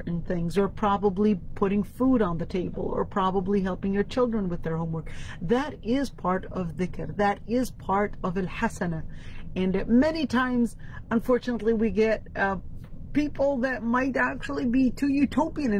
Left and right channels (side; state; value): both; identical; correlation 1.00